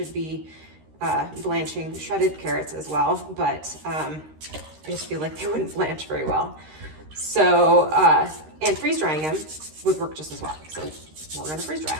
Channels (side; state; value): left; late; 13 ms